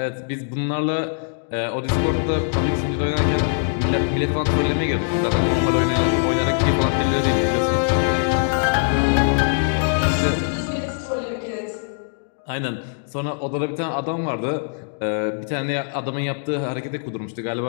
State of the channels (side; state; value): right; silent; digital silence